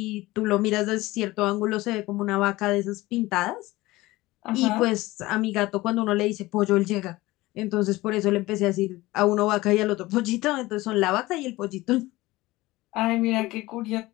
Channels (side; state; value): right; quieter; 19.2 dB